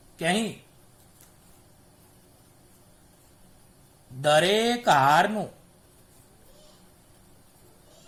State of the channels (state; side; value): identical; both; correlation 1.00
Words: કે અહીં દરેક હારનું